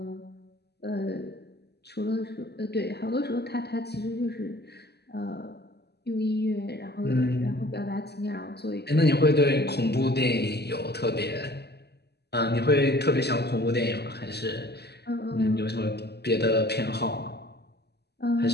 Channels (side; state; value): right; late; 0.48 ms